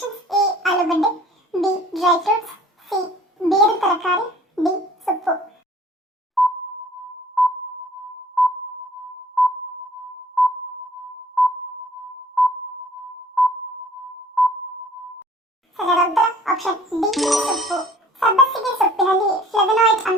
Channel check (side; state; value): both; normal; correlation 0.53